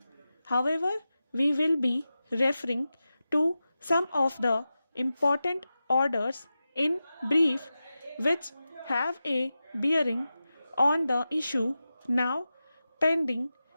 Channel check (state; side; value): inverted; both; correlation -0.93